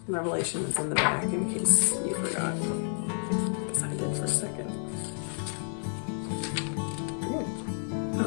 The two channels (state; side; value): silent; right; digital silence